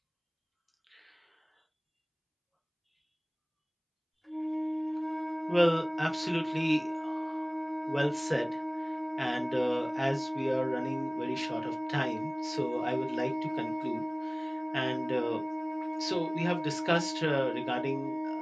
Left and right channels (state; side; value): identical; both; correlation 1.00